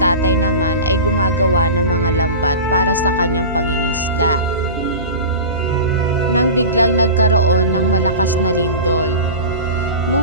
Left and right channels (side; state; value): both; inverted; correlation -0.31